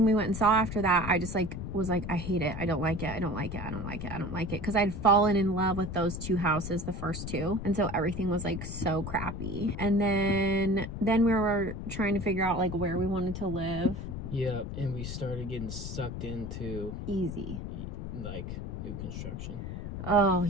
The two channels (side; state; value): left; noise; rumble, 6 dB below the sound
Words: we went and saw after that, I just like was like, I hate it. I don't like it. I don't like it. I don't like it. I don't like it. Because I'd fallen in love with those 2 houses, the first 2. And so everything was like so crappy. And then we were trying to figure out like where we wanted to live. Yep, and we started getting sucked into Easy. like new construction. Oh,